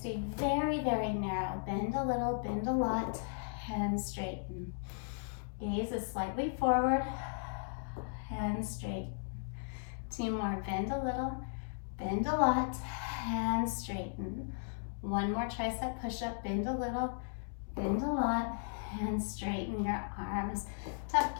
very, very narrow. Bend a little, bend a lot, and straighten. Gaze is slightly forward, and straighten. 2 more, bend a little, bend a lot, and straighten. 1 more tricep push-up, bend a little, bend a lot, and straighten your arms. Tuck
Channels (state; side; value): silent; right; digital silence